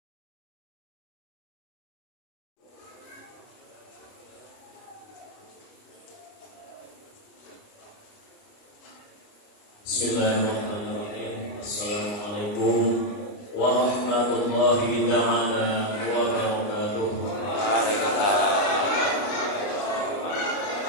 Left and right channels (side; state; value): right; late; 29 ms